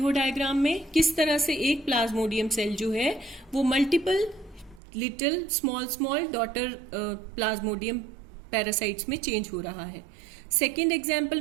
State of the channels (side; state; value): left; drops out; at 4.8 s